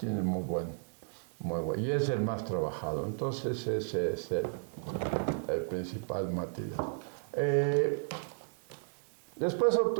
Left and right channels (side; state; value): left; silent; digital silence